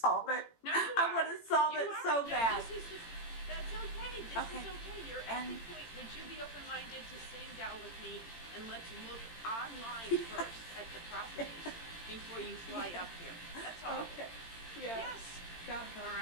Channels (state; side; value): late; right; 18 ms